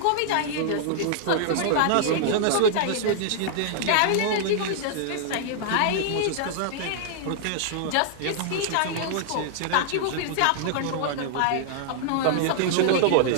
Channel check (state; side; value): different; both; correlation -0.01